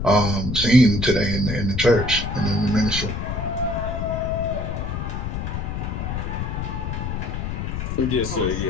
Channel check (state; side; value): noise; left; rumble, 3 dB below the sound